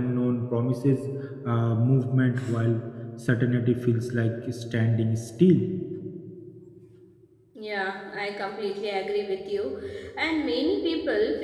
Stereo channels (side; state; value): both; identical; correlation 1.00